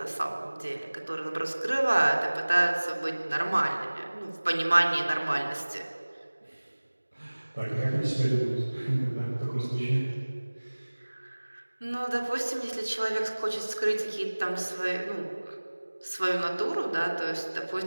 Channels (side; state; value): both; inverted; correlation -1.00